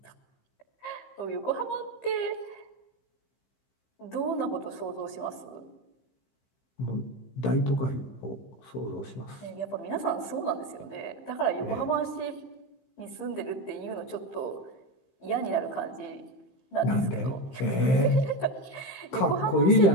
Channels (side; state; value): right; late; 15 ms